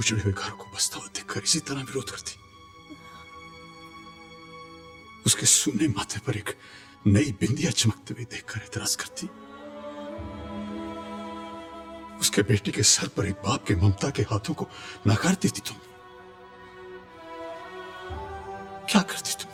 हुए घर को बसता हुआ देखकर इसी तरह विरोध करती? उसके सूने माथे पर एक नई बिंदिया चमकते हुए देखकर एतराज करती? उसके बेटी के सर पर एक बाप के ममता के हाथों को नकार देती तुम? क्या करती तुम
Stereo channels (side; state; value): both; identical; correlation 1.00